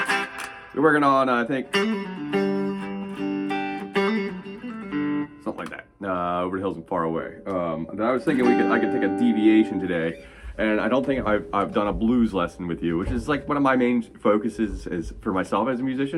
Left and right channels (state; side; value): identical; both; correlation 1.00